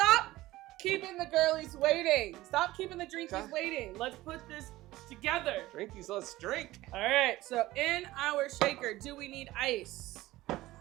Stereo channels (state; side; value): quieter; left; 17.4 dB